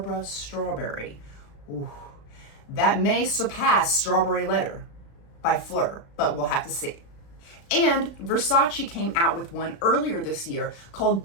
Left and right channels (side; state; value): right; late; 36 ms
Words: Strawberry. Ooh, that may surpass Strawberry Letter by Fleur, but we'll have to see. And Versace came out with one earlier this year called